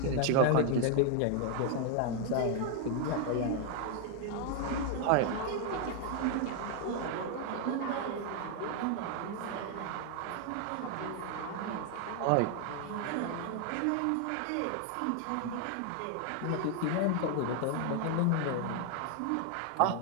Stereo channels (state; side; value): different; both; correlation 0.00